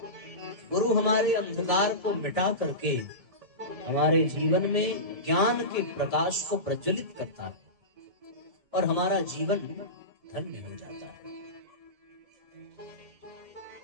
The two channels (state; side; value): late; left; 1.7 ms